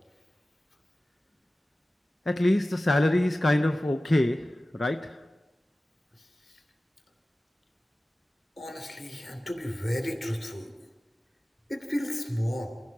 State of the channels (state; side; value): normal; both; correlation 0.96